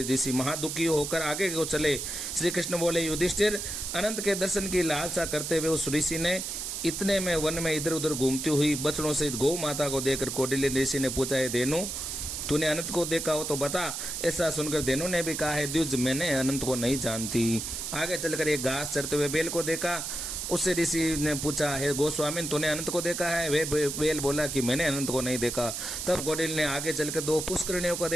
ऋषि महादुखी होकर आगे को चले। श्री कृष्ण बोले, युधिष्ठिर, अनंत के दर्शन की लालसा करते हुए उस ऋषि ने इतने में वन में इधर उधर घूमती हुई बछड़ों सहित गौ माता को देखकर कौटिल्य ऋषि ने पूछा, है धेनु, तूने अनंत को देखा हो तो बता। ऐसा सुनकर धेनु ने भी कहा, है द्विज, मैंने अनंत को नहीं जानती। आगे चलकर एक घास चरते हुए बेल को देखा। उससे ऋषि ने पूछा, है गोस्वामी, तूने अनंत को देखा है? वे बेल बोला कि मैंने अनंत को नहीं देखा। तब कौटिल्य ने आगे चलकर 2 पुष्करिणियों को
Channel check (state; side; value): noise; right; hiss, 4 dB below the sound